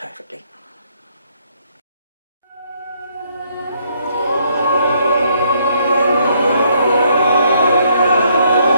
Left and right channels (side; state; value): both; inverted; correlation -0.69